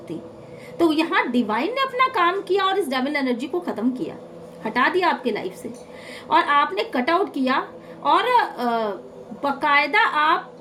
तो यहाँ डिवाइन ने अपना काम किया और इस डेविल एनर्जी को खत्म किया, हटा दिया आपके लाइफ से, और आपने कट आउट किया। और बकायदा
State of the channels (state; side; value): identical; both; correlation 1.00